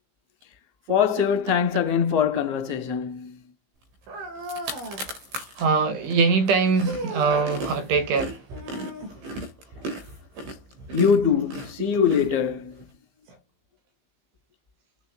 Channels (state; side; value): late; left; 15 ms